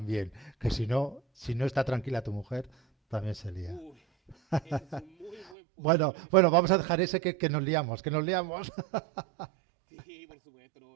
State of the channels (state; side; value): drops out; left; at 5.6 s